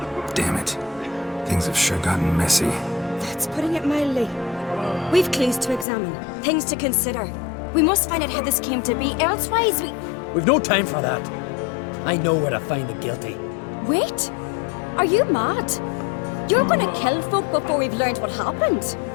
Damn it. Things have sure gotten messy. That's putting it mildly. We've clues to examine, things to consider. We must find out how this came to be, elsewise We've no time for that. I know where to find the guilty. Wait! Are you mad? You're gonna kill folk before we've learned what happened?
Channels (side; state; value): right; drops out; at 5.9 s